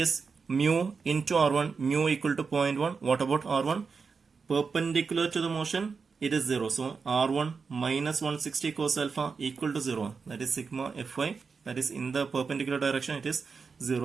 mu into r1, mu equal to 0.1. What about r1? Perpendicular to the motion, it is 0. So r1 minus 160 cos alpha equal to 0. That is sigma fy. That is in the perpendicular direction, it is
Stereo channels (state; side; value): quieter; left; 5.2 dB